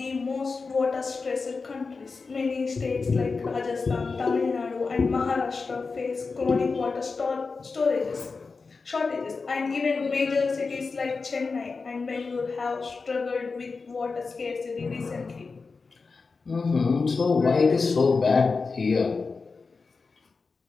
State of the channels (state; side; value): quieter; right; 4.4 dB